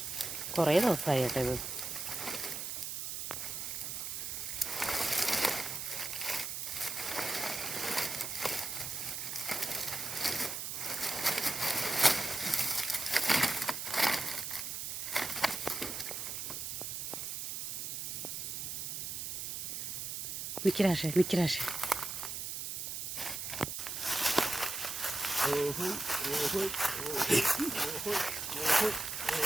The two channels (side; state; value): right; noise; hiss, 4 dB below the sound